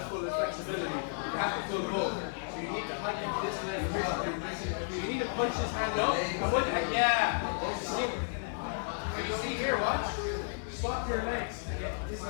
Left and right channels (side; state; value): right; silent; digital silence